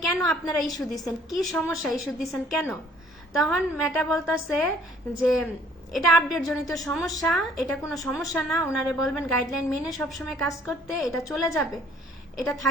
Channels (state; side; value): normal; both; correlation 0.59